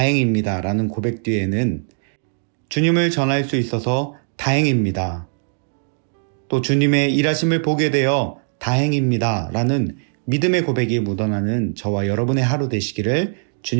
라는 고백 뒤에는 주님을 전할 수 있어서 다행입니다. 또 주님의 일하심을 보게 되어 다행입니다 라는 믿음의 고백이 묻어나는 저와 여러분의 하루 되시기를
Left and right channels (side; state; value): left; silent; digital silence